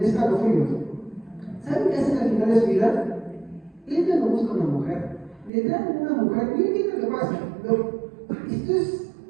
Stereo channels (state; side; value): drops out; left; at 5.5 s